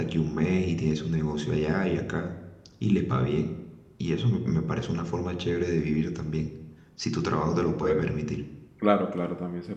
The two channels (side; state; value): both; identical; correlation 1.00